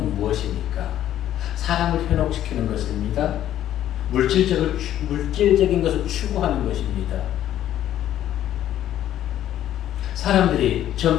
무엇입니까? 사람을 현혹시키는 것입니다. 물질적인 것을 추구하는 것입니다. 사람들이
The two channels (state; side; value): quieter; right; 11.9 dB